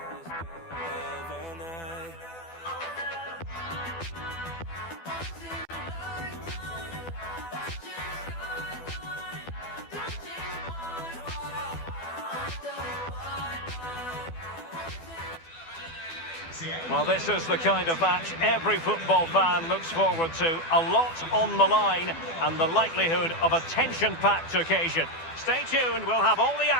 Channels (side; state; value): right; late; 12 ms